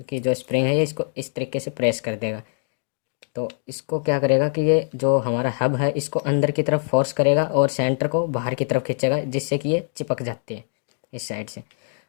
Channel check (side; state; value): right; silent; 60 dB below the other